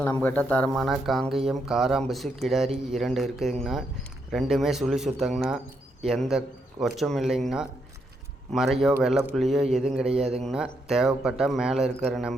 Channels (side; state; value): both; normal; correlation 0.78